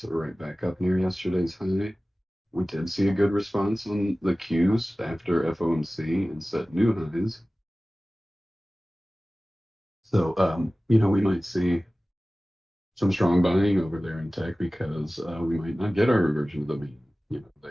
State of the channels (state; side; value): normal; both; correlation 0.97